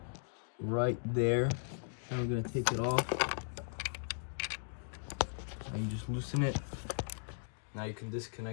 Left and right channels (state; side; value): silent; right; digital silence